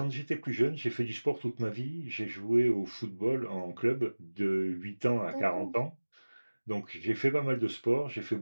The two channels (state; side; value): inverted; both; correlation -1.00